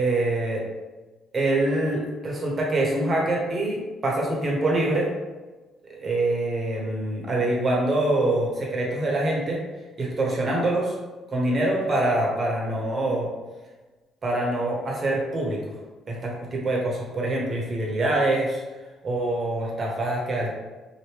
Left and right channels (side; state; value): both; normal; correlation 0.71